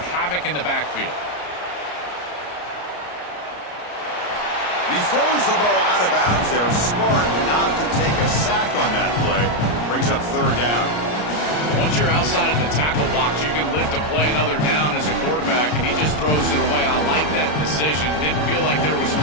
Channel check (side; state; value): right; late; 33 ms